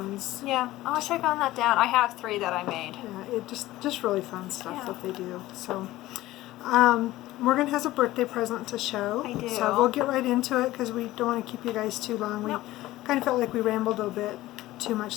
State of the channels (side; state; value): right; quieter; 16.7 dB